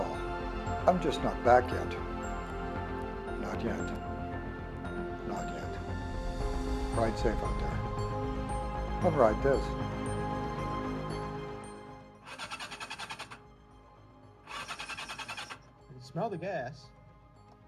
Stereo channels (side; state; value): both; identical; correlation 1.00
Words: I'm just not back yet. Not yet. Not yet. Ride safe out there. I'll ride this. I can smell the gas.